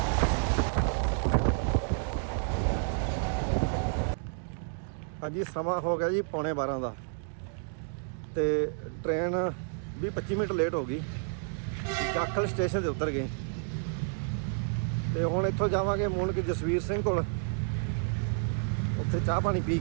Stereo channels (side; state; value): left; silent; 58 dB below the other